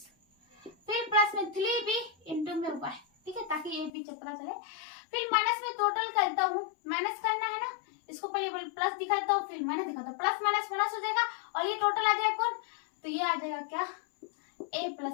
फिर प्लस में 3b इंटू में y, ठीक है, ताकि ये भी चक्रा चले। फिर माइनस में टोटल करता हूँ, माइनस करना है ना, इसको पहले प्लस दिखाता हूँ फिर माइनस दिखाता हूँ, प्लस माइनस माइनस हो जाएगा और ये टोटल आ जाएगा कौन, तो ये आ जाएगा क्या a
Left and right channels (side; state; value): right; drops out; at 3.9 s